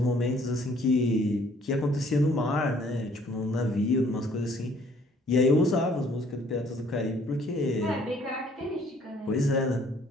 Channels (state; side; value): normal; both; correlation 0.60